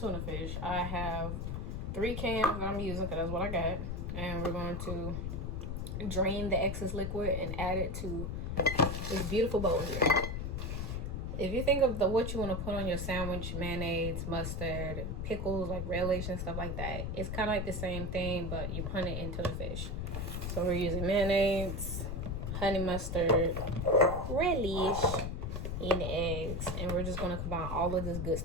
fish. I have 3 cans that I'm using because that's what I got. And we're going to drain the excess liquid and add it to this beautiful bowl here. If you think of what you want to put on your sandwich, mayonnaise, mustard, pickles, like relish and stuff like that, it's kind of like the same thing, but you put it into the fish. So we're using mayonnaise, honey mustard, relish, and eggs, and we're just going to combine all of this good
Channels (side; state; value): left; noise; rumble, 3 dB below the sound